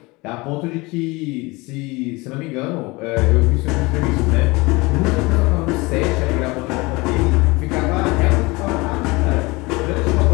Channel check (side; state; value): right; quieter; 23.9 dB